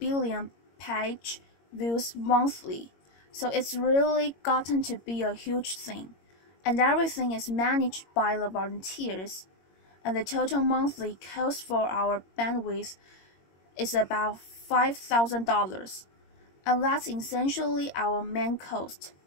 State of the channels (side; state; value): right; late; 22 ms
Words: page views monthly. So it's really gotten to be a huge thing. And everything is managed by the volunteers. And the total monthly cost for our bandwidth is about $5,000, and that's essentially our main cost.